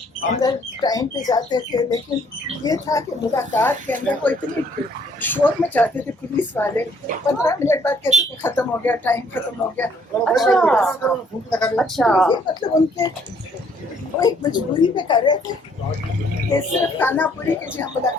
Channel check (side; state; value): both; normal; correlation 0.64